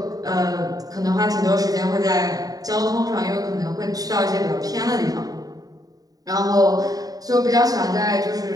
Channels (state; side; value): late; left; 0.18 ms